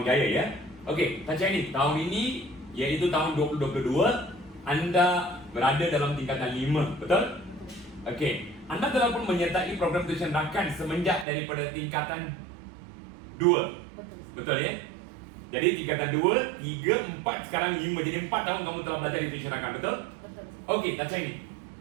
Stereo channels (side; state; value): left; drops out; at 11.2 s